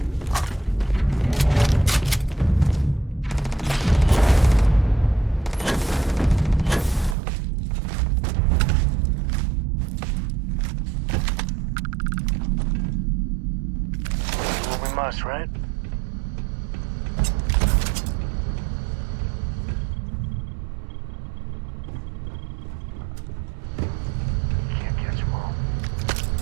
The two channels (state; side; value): drops out; left; at 7.2 s